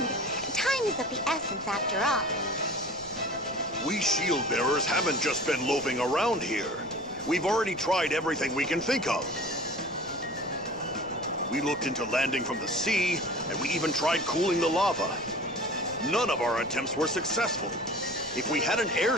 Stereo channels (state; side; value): noise; left; rumble, 22 dB below the sound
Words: Time is of the essence after all. We shield bearers haven't just been loafing around here. We've already tried everything we can think of. We looked into landing from the sea, and we even tried cooling the lava. None of our attempts were successful. If we had an